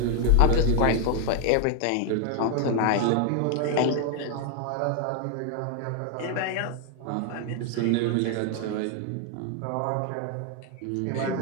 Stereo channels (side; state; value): both; different; correlation 0.00